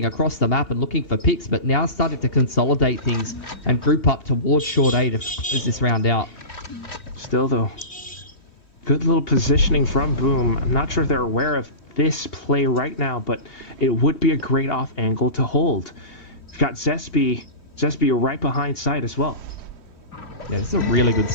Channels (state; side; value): late; right; 3.1 ms